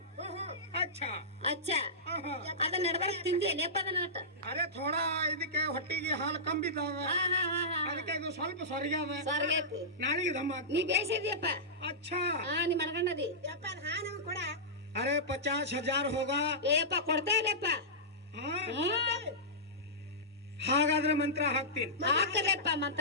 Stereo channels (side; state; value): both; normal; correlation -0.16